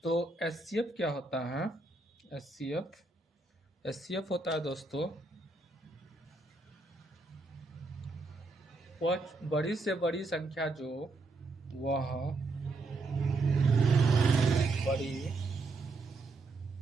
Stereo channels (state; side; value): quieter; left; 3.3 dB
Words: तो एचसीएफ क्या होता है। एचसीएफ होता है दोस्तों वह बड़ी से बड़ी संख्या जो वह बड़ी